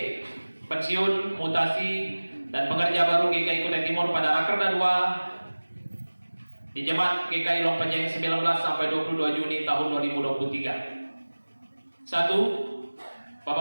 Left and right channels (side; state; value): both; inverted; correlation -1.00